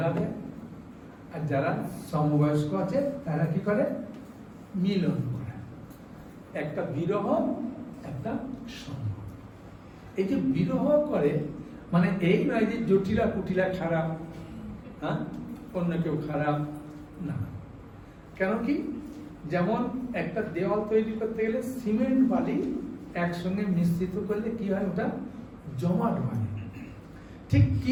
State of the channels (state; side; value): identical; both; correlation 1.00